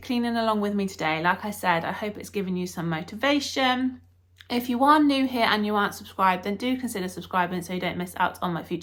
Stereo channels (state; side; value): identical; both; correlation 1.00